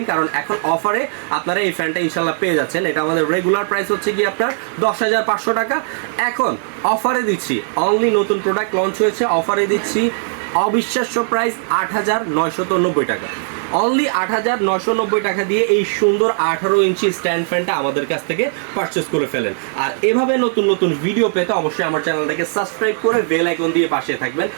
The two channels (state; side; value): silent; left; 59 dB below the other